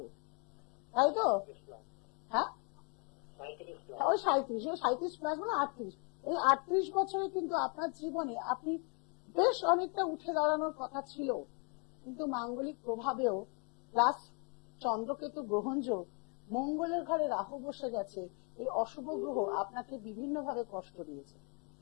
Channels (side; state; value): right; quieter; 36.9 dB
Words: তাই তো? হ্যাঁ, ওই 37 প্লাস মানে 38। এই 38 বছরে কিন্তু আপনার জীবনে আপনি বেশ অনেকটা উঠে দাঁড়ানোর কথা ছিল, কিন্তু মাঙ্গলিক প্রভাবেও প্লাস চন্দ্রকেতু গ্রহণযোগ, মঙ্গলের ঘরে রাহু বসে গেছে, এই অশুভ গ্রহ আপনাকে বিভিন্নভাবে কষ্ট দিয়েছে।